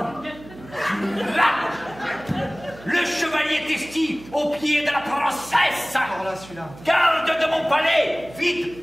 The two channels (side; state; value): right; noise; hum, 19 dB below the sound